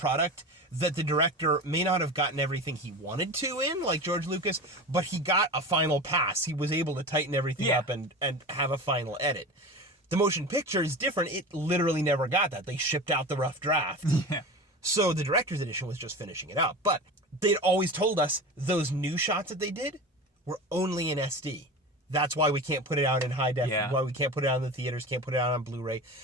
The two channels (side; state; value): both; normal; correlation 0.30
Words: that the director may not have gotten everything he wanted to in, like George Lucas, but he got a final pass. He was able to tighten everything up and have a final edit. The motion picture is different. It literally never got that. They shipped out the rough draft. So the director's edition was just finishing it out. But they'd always told us those new shots that they did were only in SD. That's why we can't put it out in high def, why we can't put it out in the theaters, can't put it out on Blu-ray,